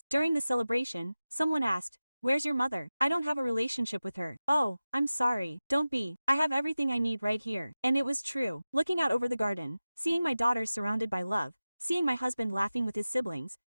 During the celebration, someone asked, "Where's your mother? I don't have a relationship with her." Oh, I'm sorry. Don't be. I have everything I need right here. And it was true. Looking out over the garden, seeing my daughters surrounded by love, seeing my husband laughing with his siblings,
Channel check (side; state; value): both; inverted; correlation -0.96